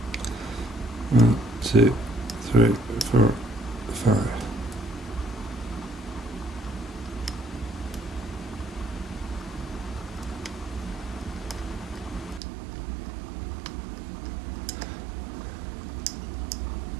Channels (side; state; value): left; drops out; at 12.4 s